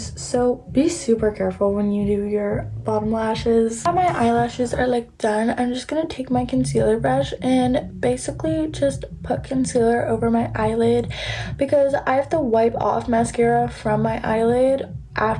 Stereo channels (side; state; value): both; identical; correlation 1.00